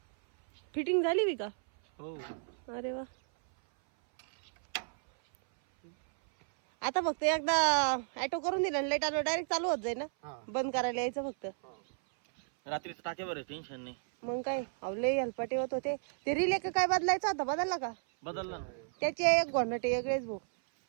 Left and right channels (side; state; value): left; silent; 56 dB below the other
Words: फिटिंग झाली बी का? हो. अरे वा. आता फक्त एकदा ऍटो करून दिला लाईट आलो डायरेक्ट चालू होत जाईल ना. बंद करायला यायचं फक्त. रात्रीचं टाक्यावर टेन्शन नाही. मग काय अवले हलपाटे होत होते. ते रिले काय बदलायचं होता? बदलला का? बदलला ना. त्याचे एक घोंडटे वेगळेच भाऊ.